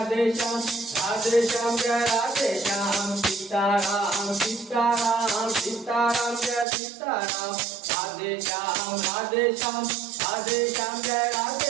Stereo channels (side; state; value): left; drops out; at 6.7 s